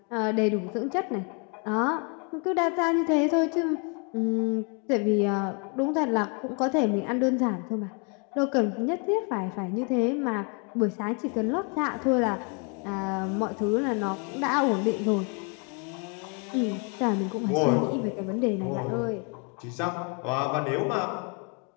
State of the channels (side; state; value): right; quieter; 36.2 dB